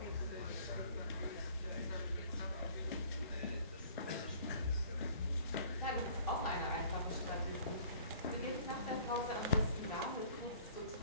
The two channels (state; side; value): inverted; both; correlation -0.52